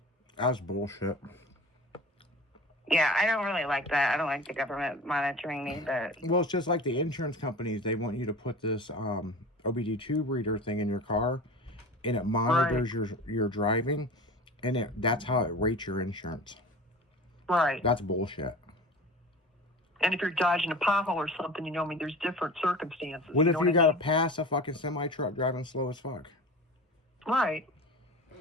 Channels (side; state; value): both; normal; correlation 0.35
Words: That's bullshit. Yeah, I don't really like that. I don't like the government monitoring me, but... Well, it's just like the insurance companies. They want you to put this OBD2 reader thing in your car, and it monitors your driving, and that's how it rates your insurance. Right. That's bullshit. And if you're dodging a pothole or something, there's different circumstances. What if know you I got to mean? pass a fucking semi-truck driving slow as fuck? Right.